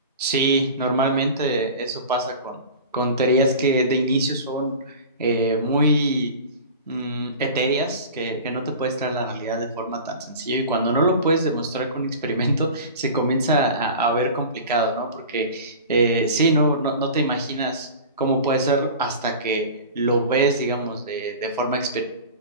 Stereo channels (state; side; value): inverted; both; correlation -0.36